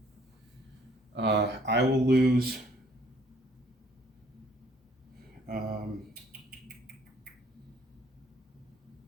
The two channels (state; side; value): normal; both; correlation 0.61